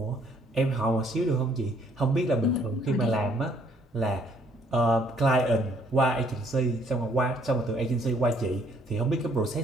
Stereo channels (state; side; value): normal; both; correlation 0.65